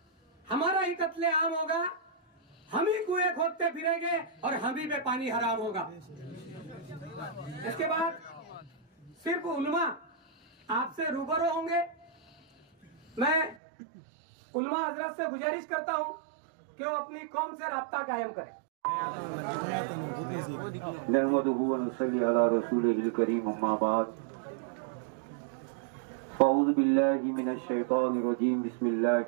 हमारा ही कत्लेआम होगा. हम ही कुएं खोदते फिरेंगे और हम ही पे पानी हराम होगा. इसके बाद सिर्फ उलमा आपसे रूबरू होंगे. मैं उलमा हजरत से गुजारिश करता हूं कि वो अपनी कौम से राब्ता कायम करें. नहमदुहु व नसल्ली अला रसूलिहिल करीम, अम्मा बाद. अऊज़ु बिल्लाहि मिनश शैतानिर रजीम, बिस्मिल्लाहिर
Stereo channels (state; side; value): drops out; left; at 13.6 s